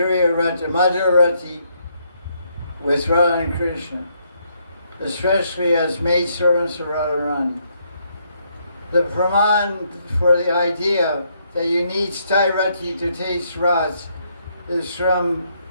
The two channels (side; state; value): both; inverted; correlation -0.73